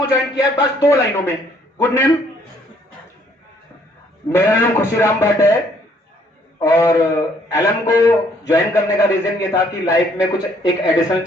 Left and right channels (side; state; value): both; normal; correlation 0.64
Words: ज्वाइन किया, बस 2 लाइनों में। Good name. मेरा नाम खुशीराम भट्ट है और एलएम को ज्वाइन करने का रीजन ये था कि लाइफ में कुछ एक एडिशनल